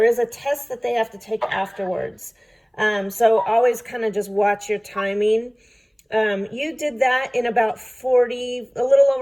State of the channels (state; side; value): identical; both; correlation 1.00